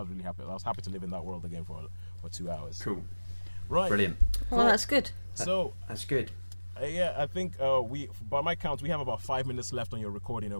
happy. I was happy to live in that world again for 2 hours. Cool. Right. Brilliant. Well, that's good. So That's good. yeah, I think we, by my count, we have about 5 minutes left on your recording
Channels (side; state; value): both; inverted; correlation -1.00